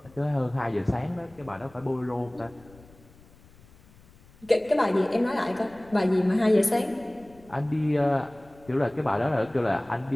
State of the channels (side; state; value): left; noise; rumble, 26 dB below the sound